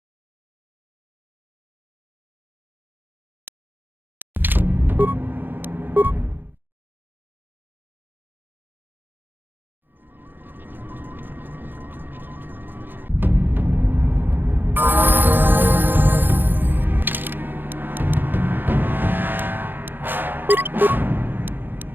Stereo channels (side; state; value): left; late; 0.094 ms